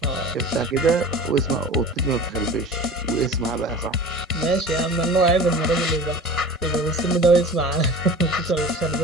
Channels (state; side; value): normal; both; correlation 0.37